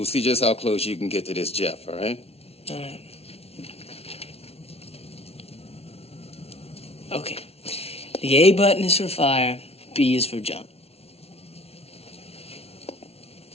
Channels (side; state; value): right; late; 0.30 ms